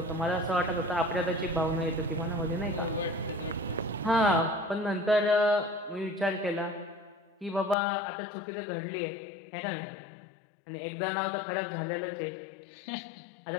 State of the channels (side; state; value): right; drops out; at 7.8 s